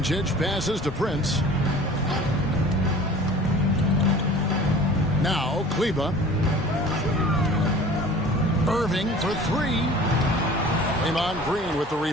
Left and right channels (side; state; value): both; normal; correlation 0.44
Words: passes to Prince. Now Kleba. Irving for three. Draymond Green with the